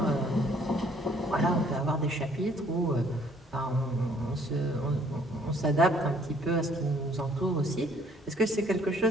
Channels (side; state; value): both; normal; correlation 0.61